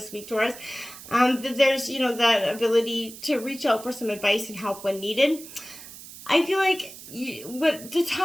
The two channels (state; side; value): noise; right; hiss, 15 dB below the sound